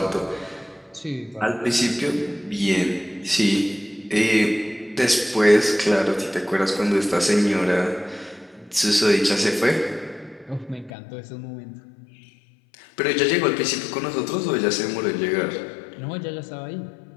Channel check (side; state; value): right; drops out; at 10.9 s